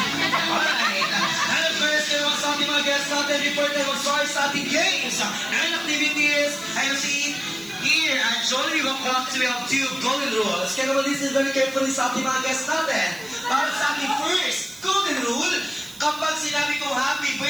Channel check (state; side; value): noise; right; hiss, 18 dB below the sound